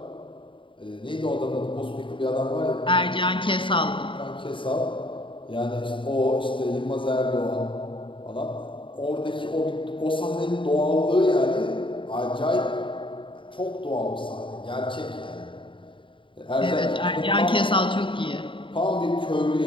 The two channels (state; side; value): late; right; 0.25 ms